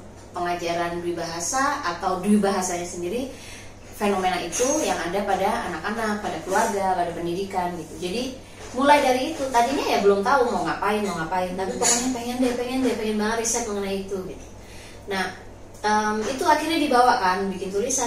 pengajaran dwi bahasa atau dwi bahasanya sendiri, fenomena itu yang ada pada anak-anak, pada keluarga, pada pendidikan gitu. Jadi mulai dari itu, tadinya ya belum tahu mau ngapain, tapi pokoknya pengen banget riset mengenai itu gitu. Nah, itu akhirnya dibawa kan, bikin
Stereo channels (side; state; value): both; identical; correlation 1.00